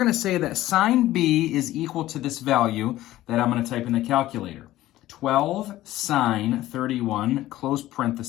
to say that sine B is equal to this value that I'm going to type in the calculator. 12 sine 31, close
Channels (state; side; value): quieter; right; 15.3 dB